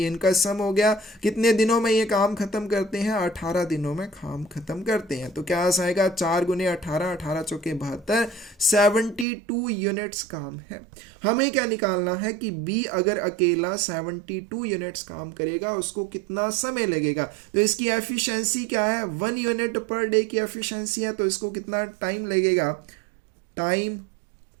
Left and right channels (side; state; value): left; drops out; at 9.2 s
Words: इनका सम हो गया, कितने दिनों में ये काम खत्म करते हैं, 18 दिनों में काम खत्म करते हैं। तो क्या आ जाएगा, 4 × 18, 18 चौके 72, 72 यूनिट्स काम है। हमें क्या निकालना है कि बी अगर अकेला 72 यूनिट्स काम करेगा, उसको कितना समय लगेगा। तो इसकी एफिशिएंसी क्या है, 1 यूनिट पर डे की एफिशिएंसी है, तो इसको कितना टाइम लगेगा, time